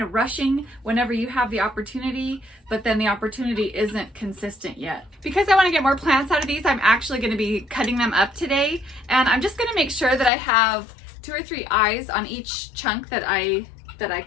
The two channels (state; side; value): drops out; right; at 10.3 s